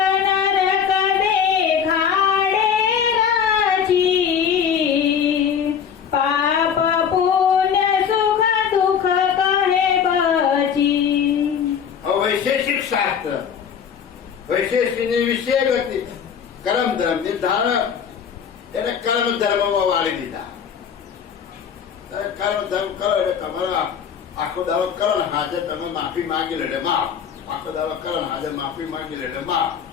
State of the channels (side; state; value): right; quieter; 7.6 dB